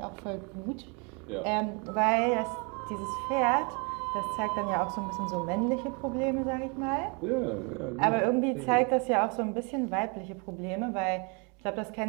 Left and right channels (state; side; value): quieter; left; 33.1 dB